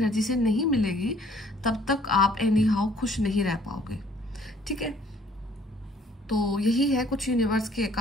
से नहीं मिलेगी तब तक आप एनी हाउ खुश नहीं रह पाओगे। ठीक है, तो यही है कुछ यूनिवर्स के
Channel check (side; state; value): both; normal; correlation 0.59